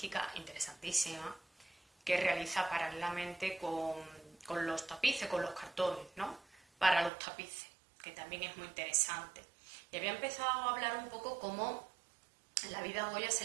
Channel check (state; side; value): drops out; left; at 7.1 s